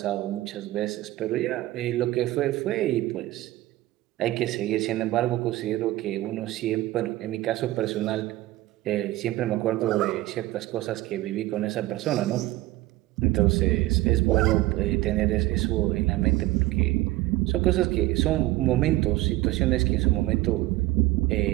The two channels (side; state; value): left; quieter; 17.5 dB